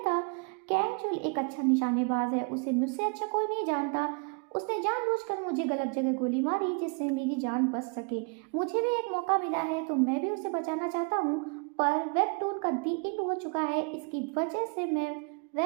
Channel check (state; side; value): quieter; left; 35.8 dB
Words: कैंग चुल एक अच्छा निशानेबाज है, उसे मुझसे अच्छा कोई नहीं जानता। उसने जानबूझकर मुझे गलत जगह गोली मारी जिससे मेरी जान बच सके। मुझे भी एक मौका मिला है तो मैं भी उसे बचाना चाहता हूँ, पर वेबटून का दी एंड हो चुका है, इसकी वजह से मैं